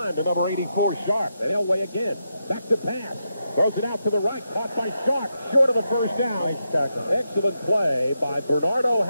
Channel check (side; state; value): both; inverted; correlation -0.85